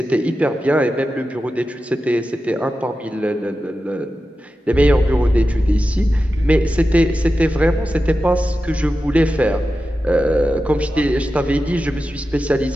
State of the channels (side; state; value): both; normal; correlation 0.92